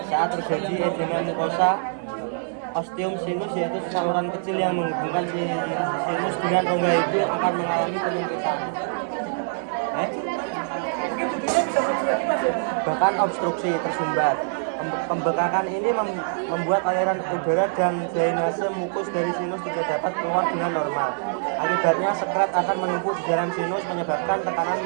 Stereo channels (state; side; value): silent; left; 57 dB below the other